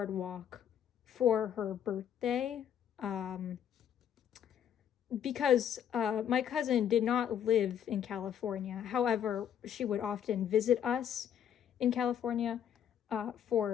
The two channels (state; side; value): quieter; right; 9.3 dB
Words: for her birthday, because my cousin did not live in California. However, she would often visit us in California